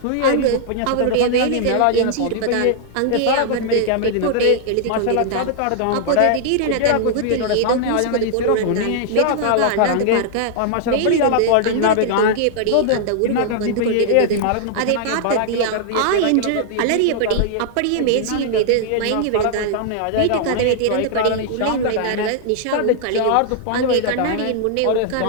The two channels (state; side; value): different; both; correlation -0.01